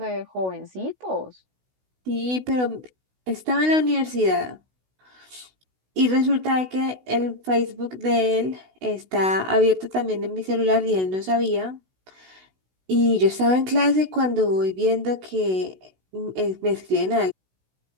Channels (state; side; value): late; left; 16 ms